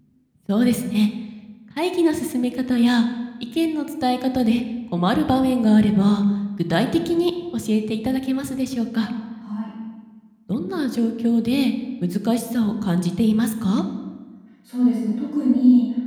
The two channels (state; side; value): identical; both; correlation 1.00